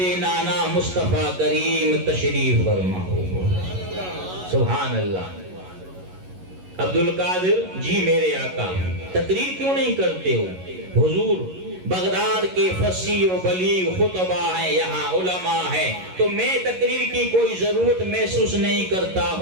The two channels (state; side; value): late; left; 11 ms